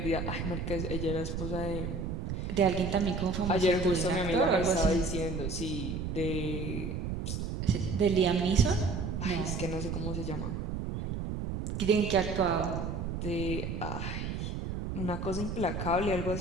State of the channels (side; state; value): right; noise; rumble, 4 dB below the sound